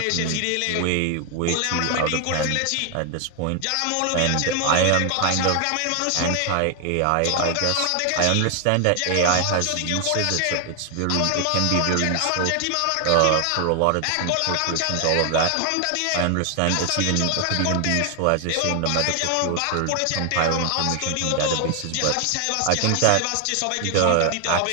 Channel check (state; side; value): different; both; correlation 0.00